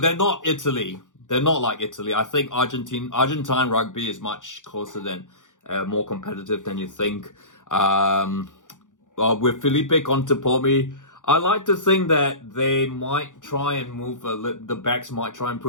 they're not Italy. They're not like Italy. I think Argentine rugby is much closer than, more competitive than you think. With Felipe Contepomi, I like to think that they might try and move, the backs might try and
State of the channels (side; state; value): right; late; 0.87 ms